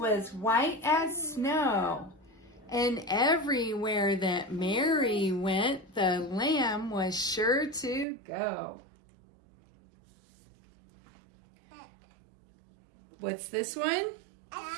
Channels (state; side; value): drops out; left; at 8.1 s